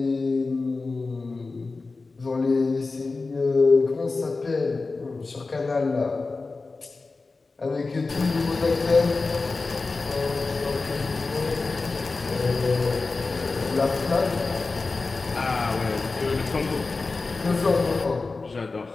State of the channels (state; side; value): quieter; right; 3.8 dB